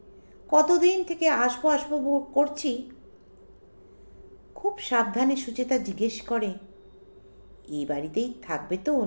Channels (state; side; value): inverted; both; correlation -1.00